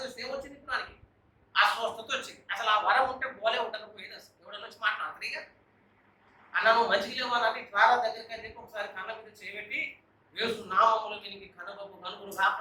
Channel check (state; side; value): identical; both; correlation 1.00